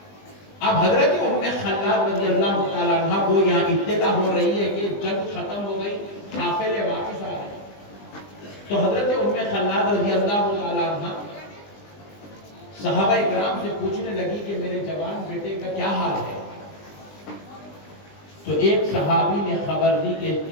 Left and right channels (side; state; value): right; late; 20 ms